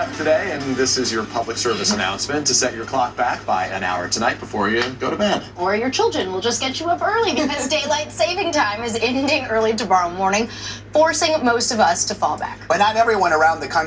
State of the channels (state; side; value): identical; both; correlation 1.00